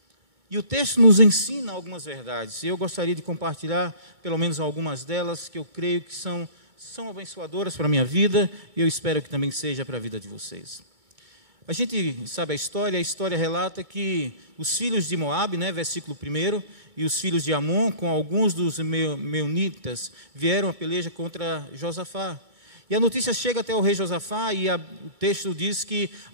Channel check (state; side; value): late; left; 1.6 ms